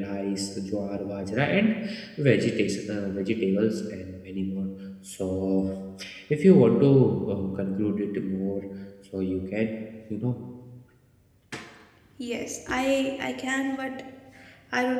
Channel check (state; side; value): identical; both; correlation 1.00